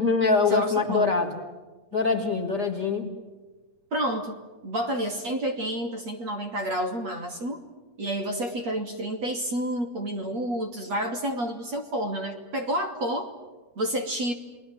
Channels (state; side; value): late; left; 8.4 ms